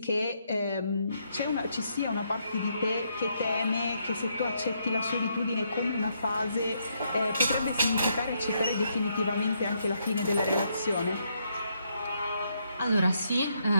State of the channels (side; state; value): both; inverted; correlation -0.76